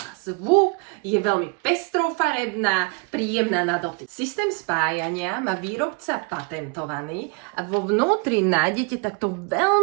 zvuk, je veľmi pestrofarebná, príjemná na dotyk. Systém spájania má výrobca patentovaný a vo vnútri nájdete takto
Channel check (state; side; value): quieter; left; 32.9 dB